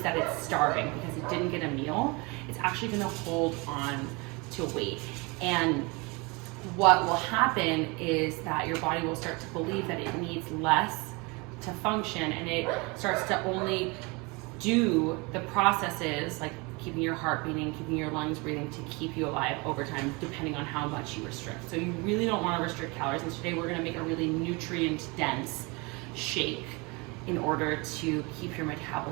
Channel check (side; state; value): left; quieter; 27.6 dB